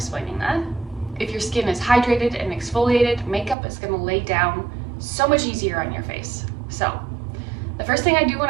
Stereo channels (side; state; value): left; drops out; at 3.6 s